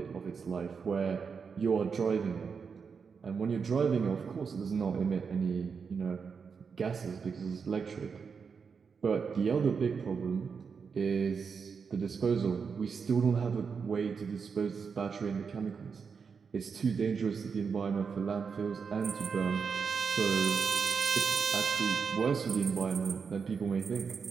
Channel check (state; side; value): quieter; left; 5.8 dB